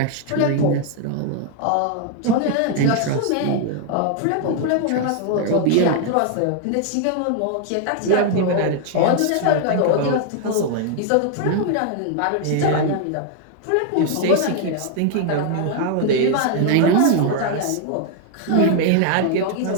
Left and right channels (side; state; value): both; different; correlation 0.00